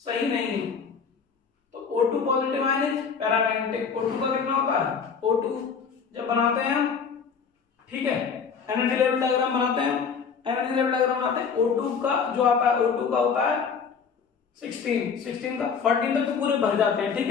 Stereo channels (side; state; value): right; quieter; 6.1 dB